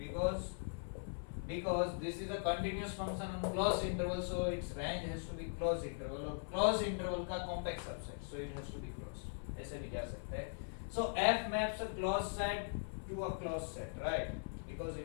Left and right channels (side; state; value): right; silent; 51 dB below the other